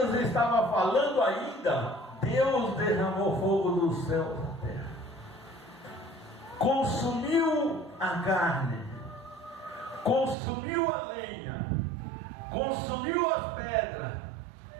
estava falando ainda, Deus derramou fogo do céu da terra, consumiu a carne, consumiu a lenha, consumiu as pedras,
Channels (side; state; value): left; drops out; at 10.4 s